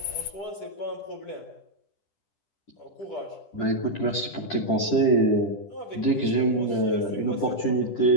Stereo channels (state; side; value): late; right; 10 ms